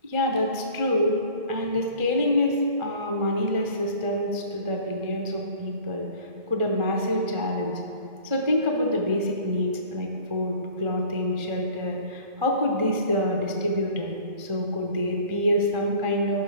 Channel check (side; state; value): left; late; 1.4 ms